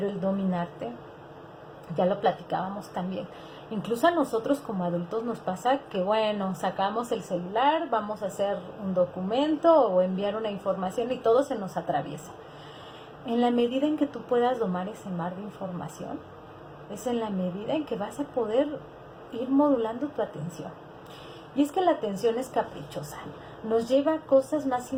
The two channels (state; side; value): identical; both; correlation 1.00